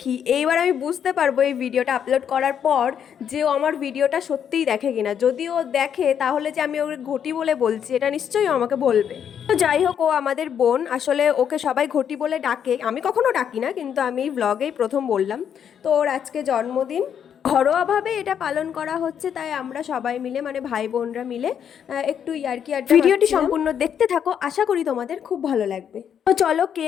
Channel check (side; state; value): right; quieter; 8.5 dB